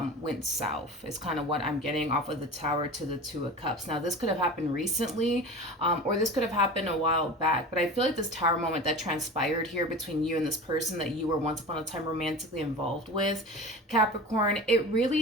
went south is kind of what I'm getting off of the Tower to the Two of Cups. Now this could have happened recently or this could have happened a while back, but I feel like this Tower moment that transpired here between you and this person that you were once upon a time romantically involved with, Capricorn, it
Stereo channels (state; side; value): normal; both; correlation 0.33